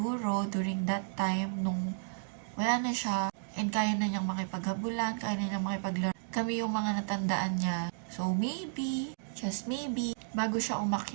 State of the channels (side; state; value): left; silent; digital silence